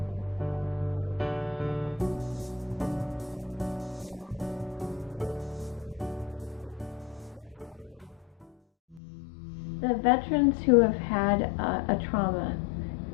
progressed, as the stress level increased, as the deployment got longer, it was hard. The veterans who have had a trauma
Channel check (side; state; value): right; drops out; at 9.0 s